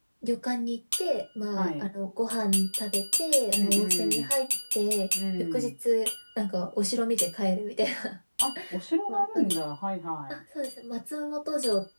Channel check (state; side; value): inverted; both; correlation -1.00